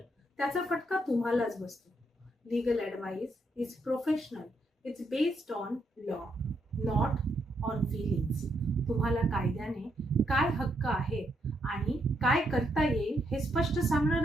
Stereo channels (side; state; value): both; normal; correlation 0.77